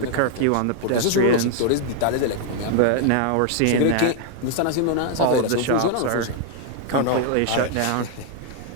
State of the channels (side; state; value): both; different; correlation 0.00